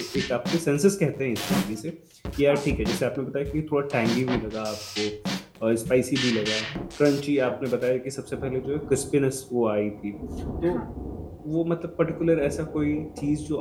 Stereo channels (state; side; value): identical; both; correlation 1.00